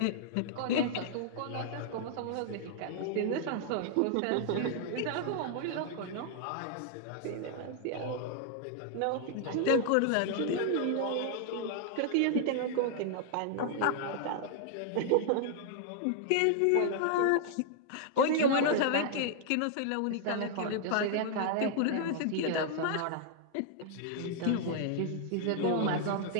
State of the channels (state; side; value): different; both; correlation -0.01